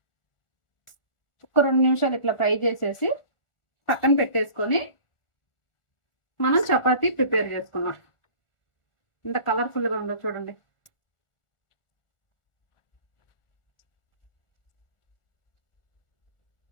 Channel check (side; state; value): right; late; 1.4 ms